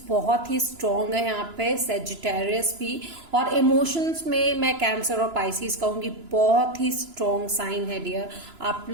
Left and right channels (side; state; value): left; late; 2.9 ms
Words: बहुत ही स्ट्रॉन्ग है यहाँ पे, सेजिटेरियस भी, और इमोशंस में मैं कैंसर और पाइसिस कहूंगी, बहुत ही स्ट्रॉन्ग साइन है डियर। आप